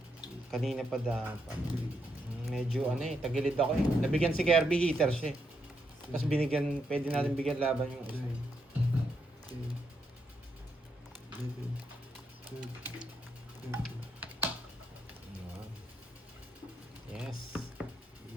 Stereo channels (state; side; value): normal; both; correlation 0.80